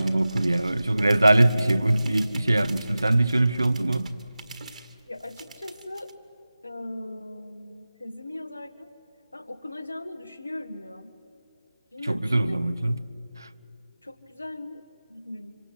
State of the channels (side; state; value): both; inverted; correlation -0.96